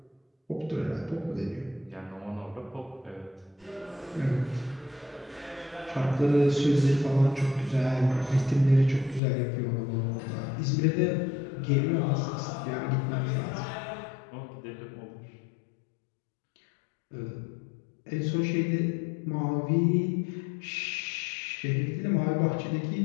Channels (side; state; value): right; drops out; at 9.2 s